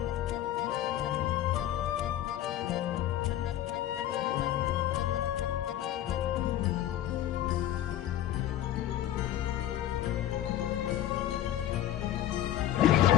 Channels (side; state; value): right; quieter; 12.4 dB